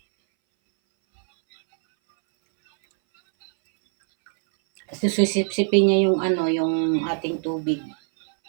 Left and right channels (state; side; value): silent; left; 62 dB below the other